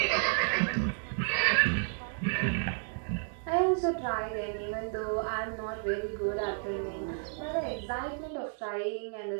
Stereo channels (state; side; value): silent; left; 57 dB below the other